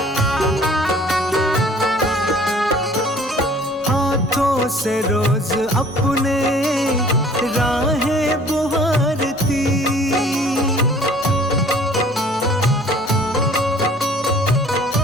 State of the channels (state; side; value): normal; both; correlation 0.52